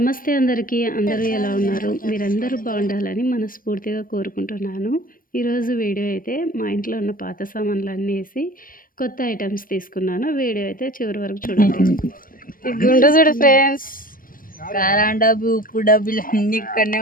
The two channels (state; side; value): late; right; 0.41 ms